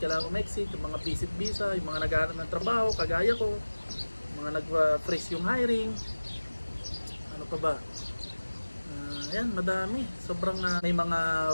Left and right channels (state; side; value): inverted; both; correlation -1.00